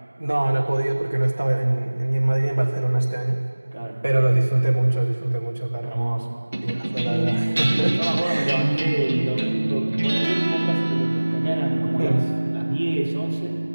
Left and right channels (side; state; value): both; inverted; correlation -1.00